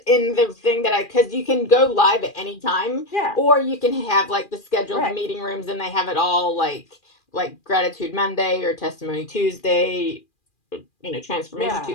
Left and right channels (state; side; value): late; right; 2.4 ms